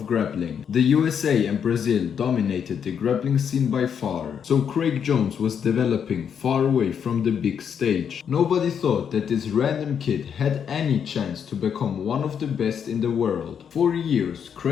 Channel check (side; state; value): right; quieter; 7.7 dB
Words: grappling. The USA and Brazil dominated the grappling scene by far. So Craig Jones was developing far away from the big stage. Nobody thought that this random kid had any chance to become one of the best in the world. For years,